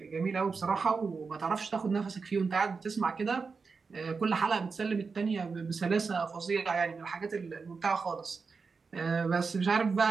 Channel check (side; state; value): left; quieter; 4.8 dB